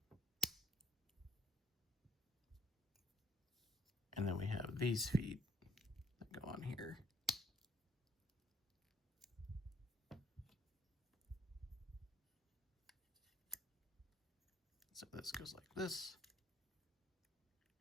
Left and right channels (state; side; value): normal; both; correlation 0.63